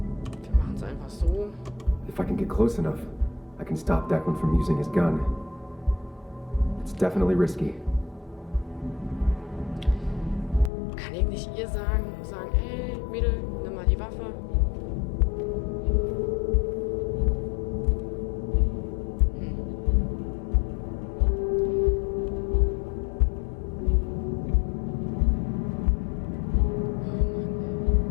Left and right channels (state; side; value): drops out; right; at 10.7 s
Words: Wir machen es einfach so. If I can get close enough, I can stop Declan from using his gun. It's definitely risky. Kann ich nicht ihr sagen, ey, Mädel, nimm mal die Waffe.